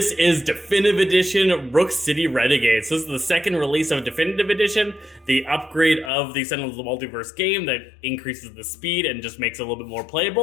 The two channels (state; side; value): drops out; right; at 6.1 s